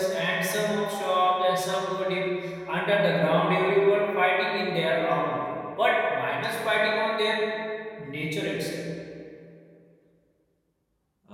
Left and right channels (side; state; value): both; identical; correlation 1.00